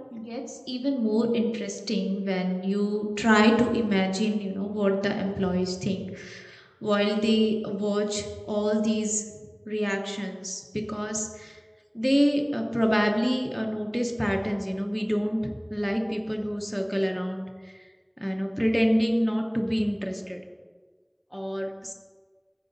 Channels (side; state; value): both; identical; correlation 1.00